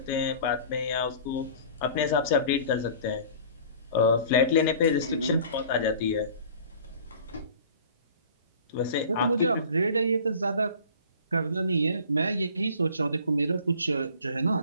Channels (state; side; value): inverted; both; correlation -0.45